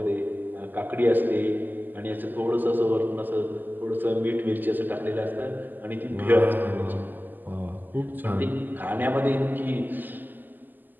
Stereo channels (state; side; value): late; left; 0.087 ms